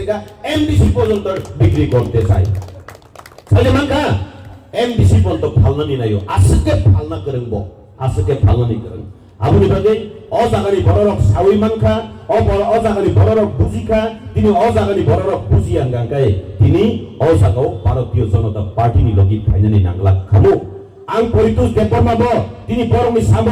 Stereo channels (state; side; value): identical; both; correlation 1.00